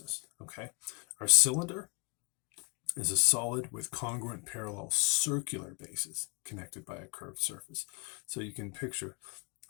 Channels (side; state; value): right; quieter; 33.3 dB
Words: okay? Our cylinder is a solid with congruent parallel circular bases connected by a curved surface. So you can picture